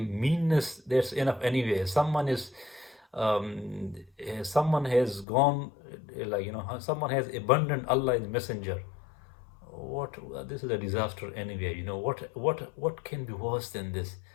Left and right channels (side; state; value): right; drops out; at 5.2 s